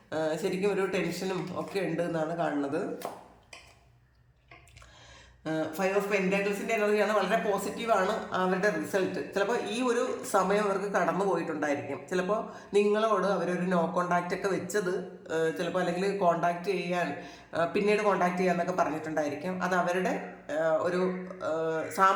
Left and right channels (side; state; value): both; identical; correlation 1.00